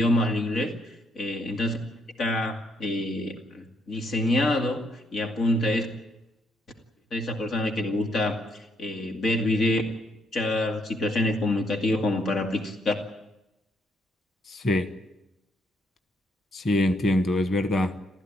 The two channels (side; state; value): both; normal; correlation 0.73